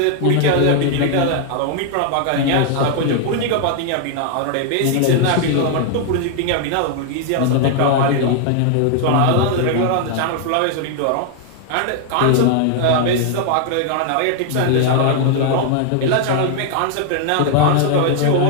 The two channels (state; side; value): different; both; correlation 0.00